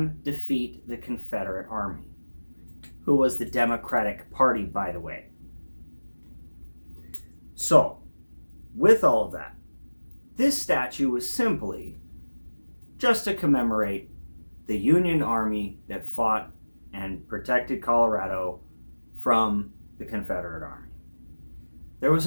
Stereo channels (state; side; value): inverted; both; correlation -1.00